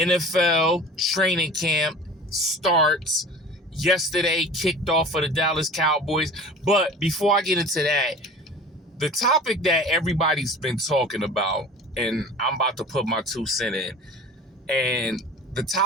training camp starts. Yesterday kicked off for the Dallas Cowboys. But before I get into that, the topic that everybody's been talking about, and I'm about to put my 2 cents in, and the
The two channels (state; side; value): normal; both; correlation 0.40